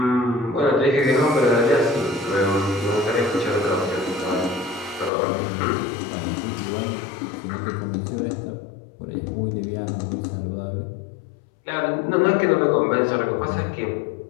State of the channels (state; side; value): drops out; right; at 5.1 s